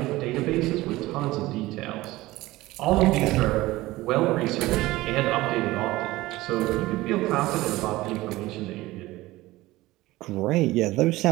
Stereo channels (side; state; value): left; quieter; 18.4 dB